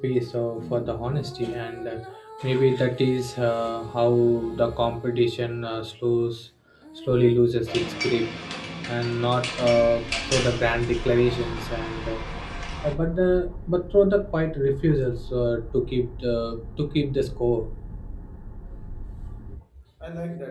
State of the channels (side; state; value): both; identical; correlation 1.00